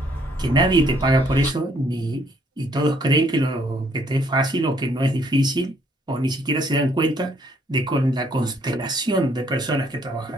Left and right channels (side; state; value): both; normal; correlation 0.66